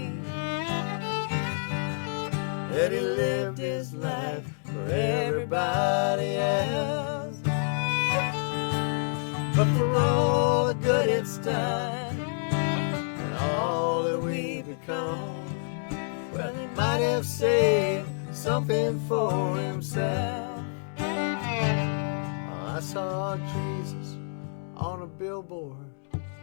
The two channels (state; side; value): silent; right; digital silence